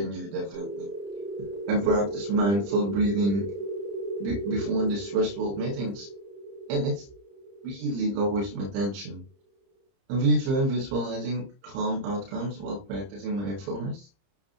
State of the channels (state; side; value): late; left; 30 ms